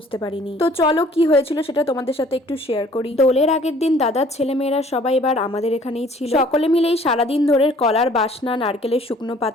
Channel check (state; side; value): normal; both; correlation 0.55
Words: পারিনি। তো চলো কি হয়েছিল সেটা তোমাদের সাথে একটু শেয়ার করি। দোলের আগের দিন দাদার ছেলেমেয়েরা সবাই এবার আমাদের এখানেই ছিল। সকলে মিলেই সারাদিন ধরে কলার বাসনা, নারকেলের শুকনো